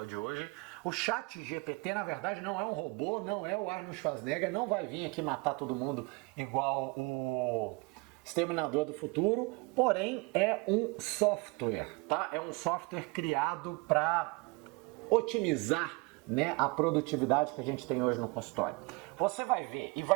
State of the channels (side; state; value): left; quieter; 28.0 dB